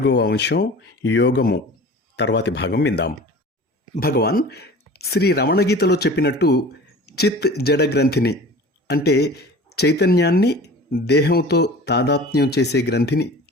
అంశం యోగము తర్వాతి భాగం విందాం. భగవాన్ శ్రీ రమణ గీతలో చెప్పినట్టు చిత్ జడ గ్రంథిని అంటే చైతన్యాన్ని దేహంతో తాదాత్మ్యం చేసే గ్రంథిని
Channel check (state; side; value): normal; both; correlation 0.40